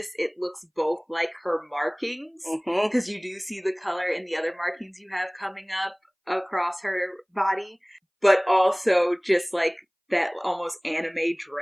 it looks both like her markings, because you do see the color in the other markings you have coming up across her body, but also just like that almost anime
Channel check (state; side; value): identical; both; correlation 1.00